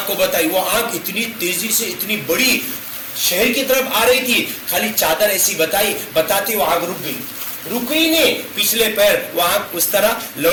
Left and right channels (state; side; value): identical; both; correlation 1.00